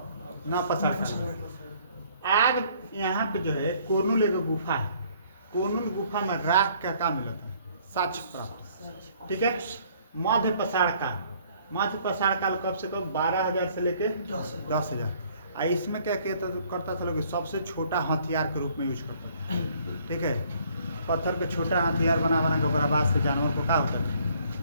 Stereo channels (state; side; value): inverted; both; correlation -0.61